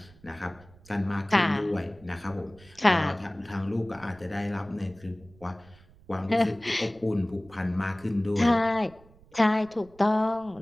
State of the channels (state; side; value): noise; right; rumble, 25 dB below the sound